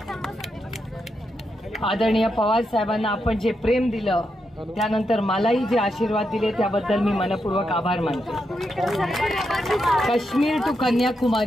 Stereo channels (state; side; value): normal; both; correlation 0.84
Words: आदरणीय पवार साहेबांना आपण जे प्रेम दिलं, त्यानंतर मलाही जे आशीर्वाद दिले त्याबद्दल मी मनपूर्वक आभार मानते। काश्मीर टू